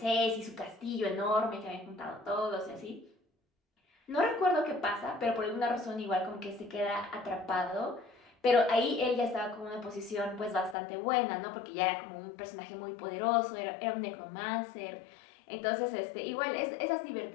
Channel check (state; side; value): drops out; right; at 10.8 s